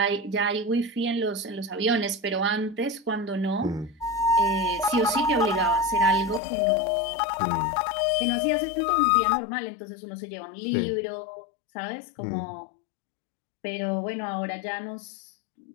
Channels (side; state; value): right; drops out; at 6.4 s